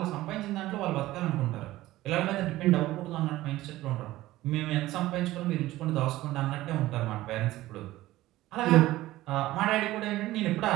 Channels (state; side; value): quieter; left; 16.6 dB